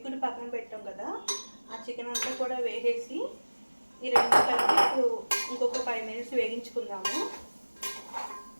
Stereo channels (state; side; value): inverted; both; correlation -1.00